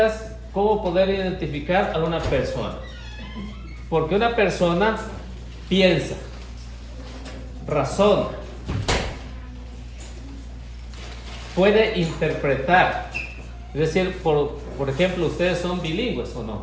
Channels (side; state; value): both; identical; correlation 1.00